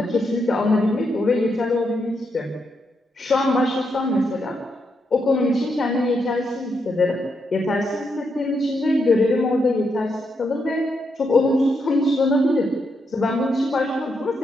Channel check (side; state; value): both; normal; correlation 0.81